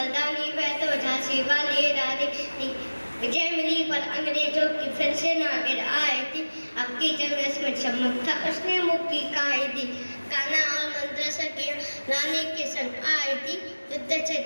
वह तो झांसी वाली रानी थी। विजय मिली पर अंग्रेजों की फिर से ना गिर आई थी। अब की जंग में चमक था उसने मुक्की खाई थी। कान्हा और मंत्र की रानी के संग आई थी। युद्ध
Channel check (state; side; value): inverted; both; correlation -1.00